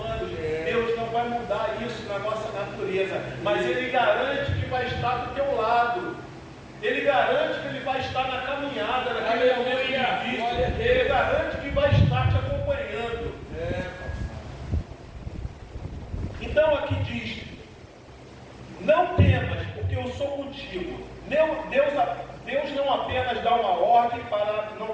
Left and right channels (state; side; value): identical; both; correlation 1.00